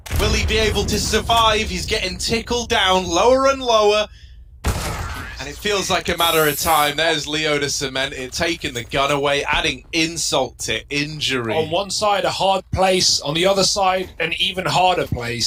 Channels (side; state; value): both; identical; correlation 1.00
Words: will he be able to survive? He's getting tickled down lower and lower, and it feels like a matter of time. There's Leo to cement it, taking the gun away, adding insult to injury. On one side, a hard place. On the other side, an even harder